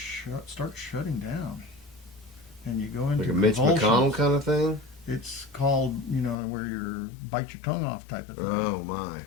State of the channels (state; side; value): drops out; right; at 6.4 s